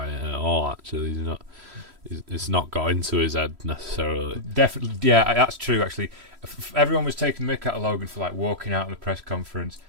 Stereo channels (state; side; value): late; left; 3.1 ms